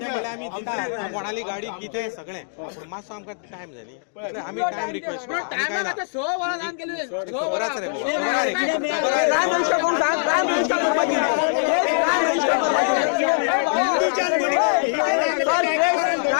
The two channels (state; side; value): silent; right; digital silence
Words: कोणाली गाडी कितें सगळें मातसो आमकां टायम जाय न्ही, आमी टायम रिक्वेस्ट